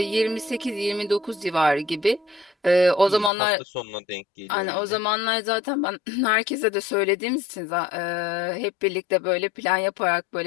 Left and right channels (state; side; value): drops out; right; at 3.3 s